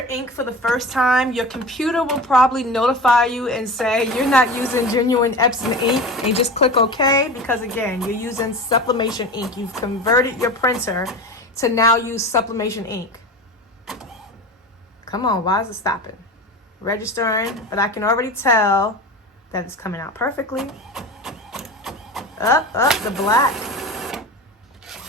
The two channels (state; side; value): normal; both; correlation 0.31